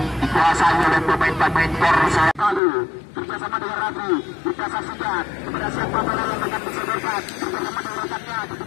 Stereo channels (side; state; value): right; drops out; at 2.6 s